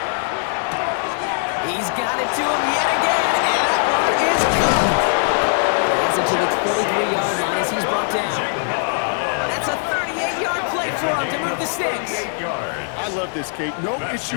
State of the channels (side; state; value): right; silent; digital silence